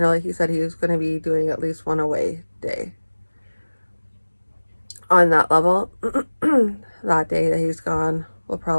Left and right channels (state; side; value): inverted; both; correlation -1.00